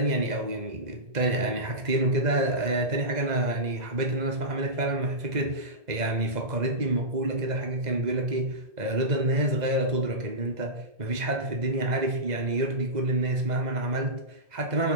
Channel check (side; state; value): left; late; 2.0 ms